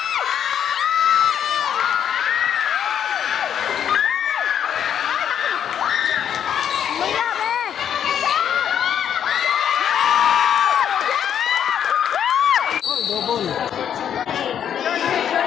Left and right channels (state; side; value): quieter; right; 9.1 dB